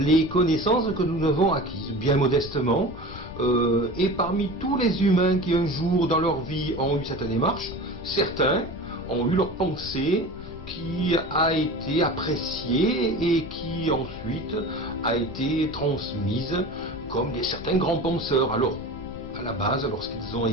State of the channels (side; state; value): left; noise; rumble, 15 dB below the sound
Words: connaissances que nous avons acquises, bien modestement. Et parmi tous les humains qui un jour dans leur vie ont eu cette démarche, certains ont eu leur pensée qui a été appréciée et qui ensuite a été transmise comme certains grands penseurs. Alors, à la base, lorsqu'ils ont